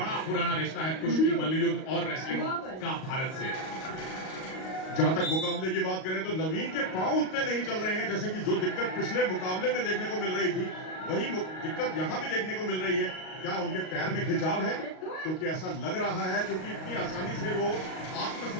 पुराना रिश्ता है कुश्ती, मल्ल युद्ध और रेसलिंग का भारत से। जहां तक मुकाबले की बात करें तो नवीन के पांव उतने नहीं चल रहे हैं, जैसे कि जो दिक्कत पिछले मुकाबले में देखने को मिल रही थी वही दिक्कत यहां भी देखने को मिल रही है। क्या उनके पैर में खिंचाव है? क्योंकि ऐसा लग रहा है, क्योंकि इतनी आसानी से वो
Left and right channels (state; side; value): late; right; 38 ms